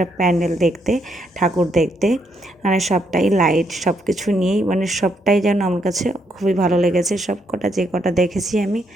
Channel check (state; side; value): normal; both; correlation 0.75